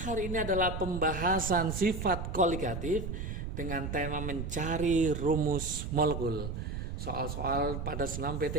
ini adalah pembahasan sifat koligatif dengan tema mencari rumus molekul. Soal-soal pada senam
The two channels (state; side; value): noise; right; rumble, 5 dB below the sound